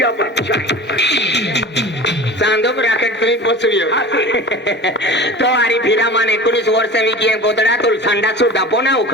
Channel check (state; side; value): normal; both; correlation 0.36